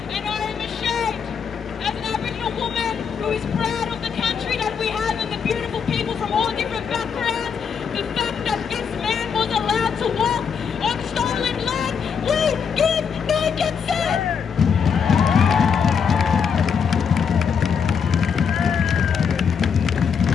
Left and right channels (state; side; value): quieter; right; 6.7 dB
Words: And I am ashamed, as an Aboriginal woman who is proud of the country that we have and the beautiful people from all different backgrounds, the fact that this man was allowed to walk on stolen land. We give no consent!